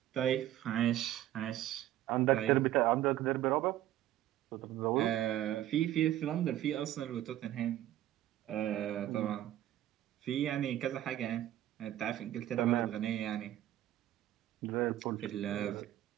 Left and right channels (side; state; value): left; quieter; 13.2 dB